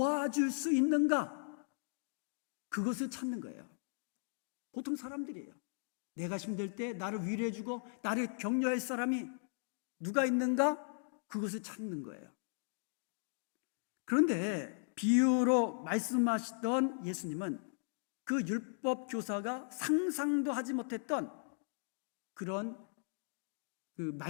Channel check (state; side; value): silent; right; digital silence